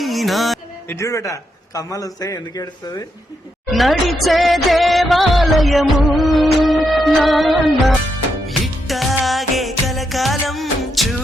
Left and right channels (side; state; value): both; normal; correlation 0.81